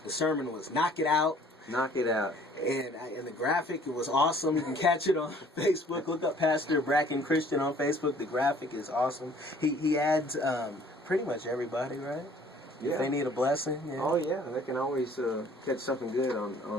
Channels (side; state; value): both; normal; correlation 0.55